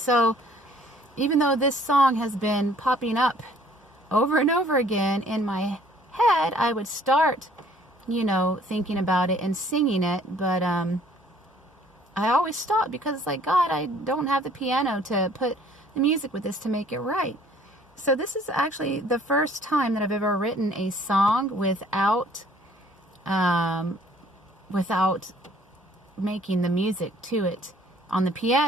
even though this song has been popping up over and over again in my head, I would start, thinking about it and singing it, but I always stop because it's like, God, I don't have the piano to put the music with this to make it right. So this is actually the first time that I've ever written a song without making the music to it on the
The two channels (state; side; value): normal; both; correlation 0.58